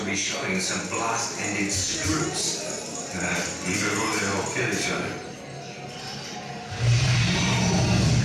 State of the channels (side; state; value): both; identical; correlation 1.00